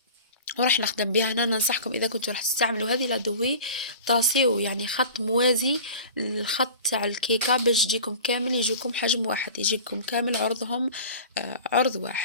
وراح نخدم بها. هنا ننصحكم اذا كنتوا راح تستعملوا هذه لادوي طاسيو يعني خط موازي للخط تاع الكيكه باش يجيكم كامل، يجيكم حجم واحد، يجيكم كامل عرضهم عرض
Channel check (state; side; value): inverted; both; correlation -0.38